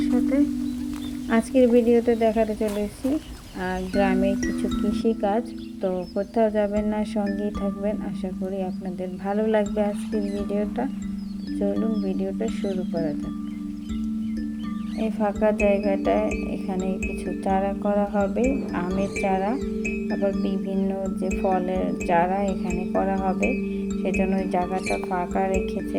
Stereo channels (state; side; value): identical; both; correlation 1.00